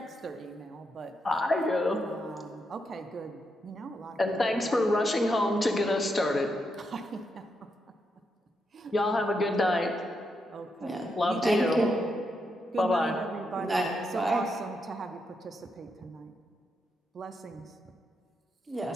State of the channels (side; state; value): both; normal; correlation 0.82